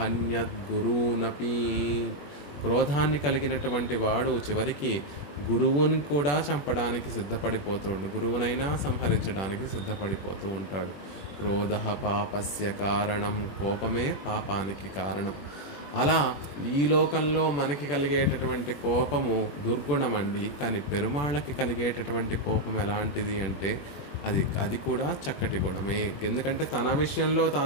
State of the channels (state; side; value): late; right; 21 ms